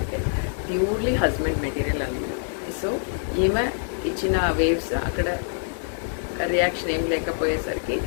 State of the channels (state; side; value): silent; right; digital silence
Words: ప్యూర్లీ హస్బెండ్ మెటీరియల్ అన్నది. సో ఈమె ఇచ్చిన వేవ్స్ అక్కడ రియాక్షన్ ఏం లేకపోయేసరికి